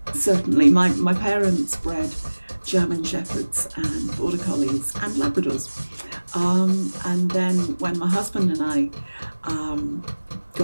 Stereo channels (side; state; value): both; inverted; correlation -1.00